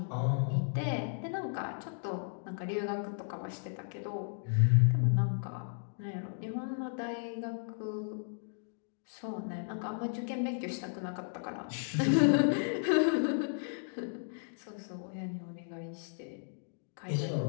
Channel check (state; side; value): silent; right; digital silence